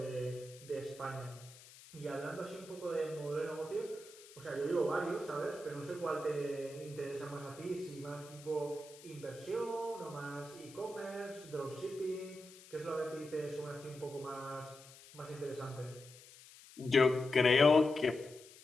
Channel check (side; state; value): left; noise; hiss, 20 dB below the sound